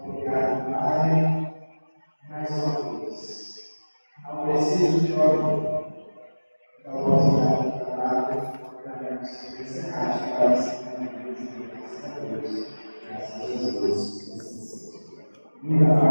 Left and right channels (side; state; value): both; inverted; correlation -1.00